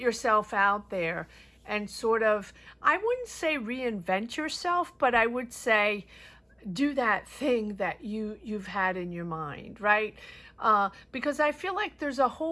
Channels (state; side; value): identical; both; correlation 1.00